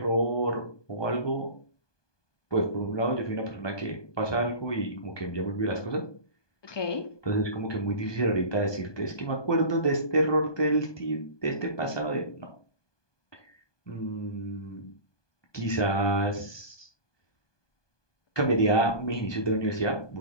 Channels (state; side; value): late; right; 1.2 ms